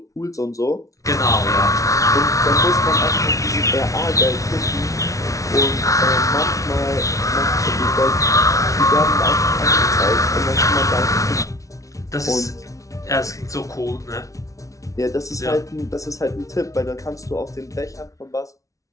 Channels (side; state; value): right; late; 0.16 ms